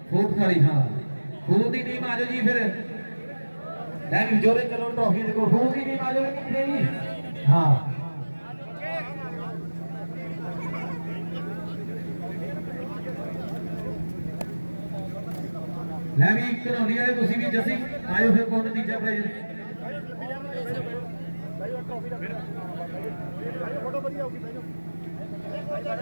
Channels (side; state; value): both; inverted; correlation -1.00